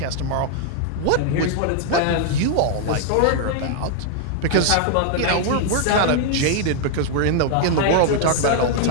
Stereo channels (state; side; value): different; both; correlation 0.00